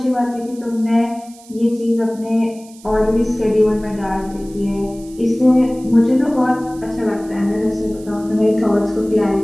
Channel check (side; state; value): right; noise; hiss, 23 dB below the sound